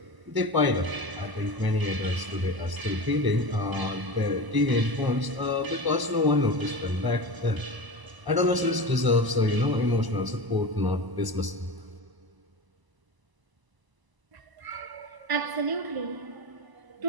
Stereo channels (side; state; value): left; late; 1.0 ms